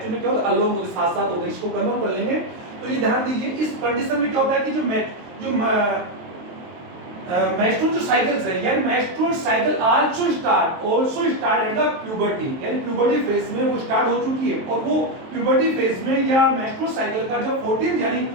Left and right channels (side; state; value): left; late; 23 ms